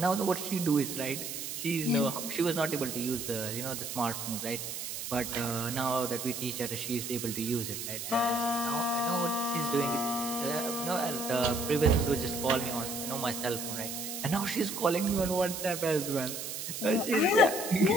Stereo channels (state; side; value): noise; right; hiss, 6 dB below the sound